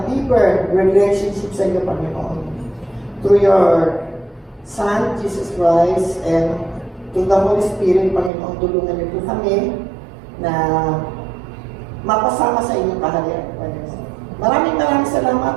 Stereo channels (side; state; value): left; drops out; at 8.3 s